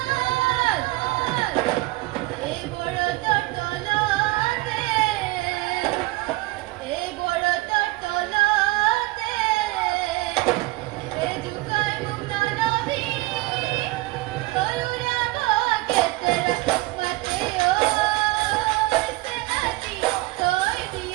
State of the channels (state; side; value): quieter; left; 20.4 dB